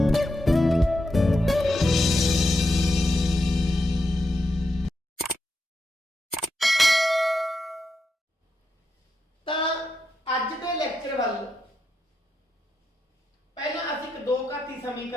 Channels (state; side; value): normal; both; correlation 0.85